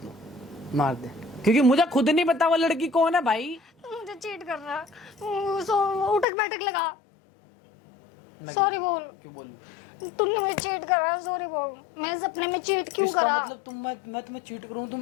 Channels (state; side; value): drops out; right; at 6.2 s